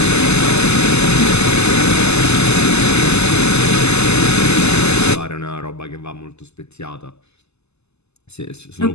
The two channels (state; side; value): late; right; 0.80 ms